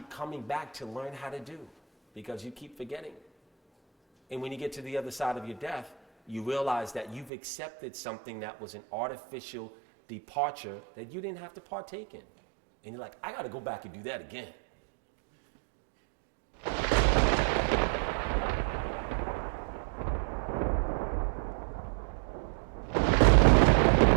coming back to learn how to do, because you keep forgetting. And when you get to the other side of your death, you realize that you've accepted something that was an artificial departure that you didn't have to partake in. And you're like, I got to go back and do that again.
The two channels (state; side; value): drops out; left; at 7.3 s